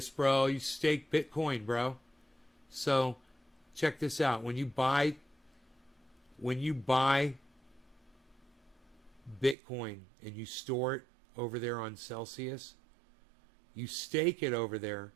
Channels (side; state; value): left; drops out; at 9.6 s